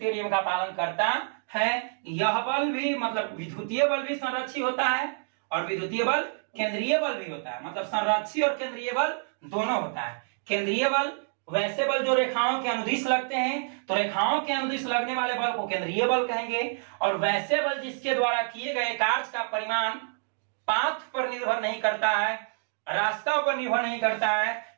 नियम का पालन करता है। यह बल भी मतलब विद्युतीय बल भी संरक्षी होता है और विद्युतीय बल केंद्रीय बल भी होता है। मतलब संरक्षी और केंद्रीय बल दोनों होता है। केंद्रीय बल वैसे बल जो रेखाओं के अनुदिश लगते हैं, तो रेखाओं के अनुदिश लगने वाले बल को केंद्रीय बल कहेंगे। और वैसे बल जिसके द्वारा किए गए कार्य का परिमाण पाथ पर निर्भर नहीं करता है, रास्ता पर निर्भर नहीं करता है,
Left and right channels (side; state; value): left; silent; digital silence